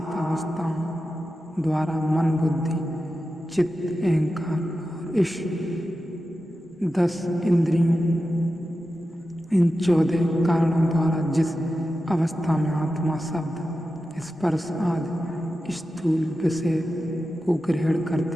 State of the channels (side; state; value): both; normal; correlation 0.92